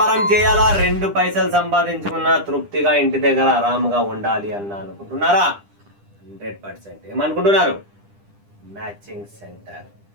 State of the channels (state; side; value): late; left; 10 ms